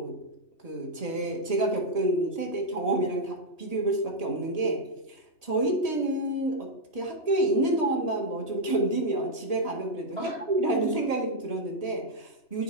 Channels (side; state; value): right; late; 3.1 ms